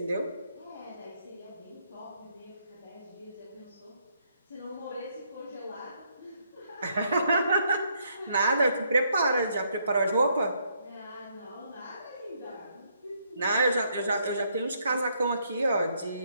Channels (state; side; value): inverted; both; correlation -0.72